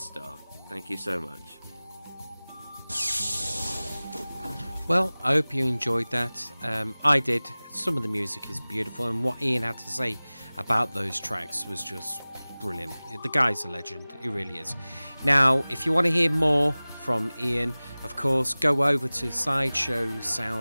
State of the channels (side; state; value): both; inverted; correlation -0.99